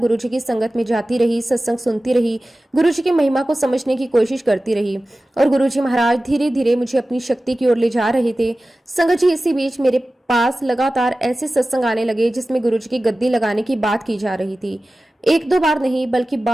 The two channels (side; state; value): both; normal; correlation 0.96